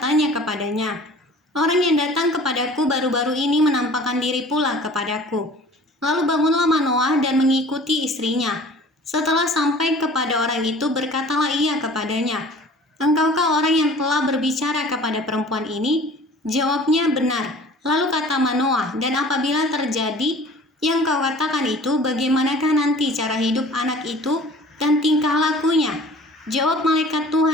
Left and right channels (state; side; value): normal; both; correlation 0.47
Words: kepadanya, orang yang datang kepadaku baru-baru ini menampakkan diri pula kepadaku. Lalu bangunlah Manoah dan mengikuti istrinya. Setelah sampai kepada orang itu, berkatalah ia kepadanya, engkaukah orang yang telah berbicara kepada perempuan ini? Jawabnya, benar. Lalu kata Manoah, dan apabila terjadi yang kau katakan itu, bagaimanakah nanti cara hidup anak itu dan tingkah lakunya? Jawab malaikat